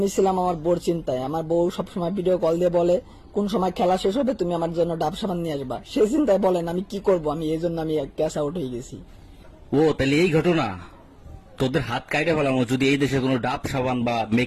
ছিলাম আমার বউর চিন্তায়। আমার বউ সবসময় ভিডিও কল দিয়ে বলে কোন সময় খেলা শেষ হবে তুমি আমার জন্য ডাব সাবান নিয়ে আসবা। সেই চিন্তায় বলেন আমি কি করব, আমি এই জন্য আমি ক্যাচ আউট হয়ে গেছি। ও তাহলে এই ঘটনা, তোদের হাত কাইটা ফেলানো যদি এই দেশে কোনো ডাব সাবান বা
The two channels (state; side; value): identical; both; correlation 1.00